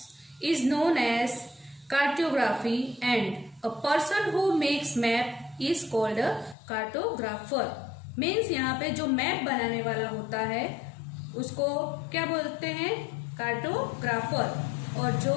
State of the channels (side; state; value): right; drops out; at 6.6 s